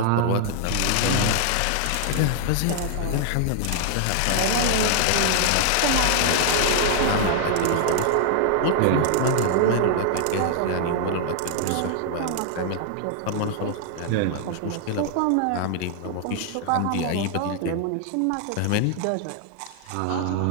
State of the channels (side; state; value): both; different; correlation 0.00